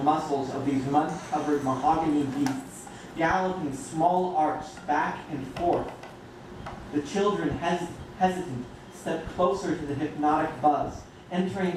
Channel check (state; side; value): identical; both; correlation 1.00